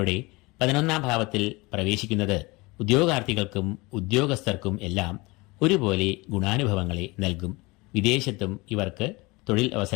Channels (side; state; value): right; quieter; 24.0 dB